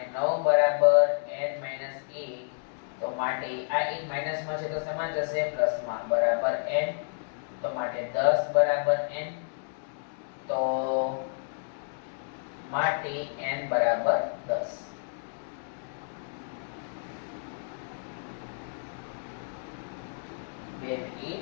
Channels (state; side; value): silent; right; digital silence